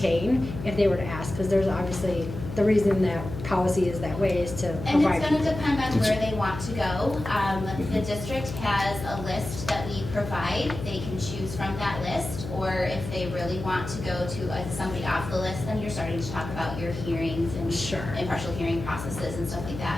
if they were to ask? Because there's obviously, the reason that policy is that way is to And provide. it's gonna depend on where they want to go. The district has a list that we provide. They can choose from that list, or if they really want to go to somebody off the list, then you're starting to talk about your hearings and impartial hearing processes and stuff like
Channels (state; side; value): noise; left; hum, 9 dB below the sound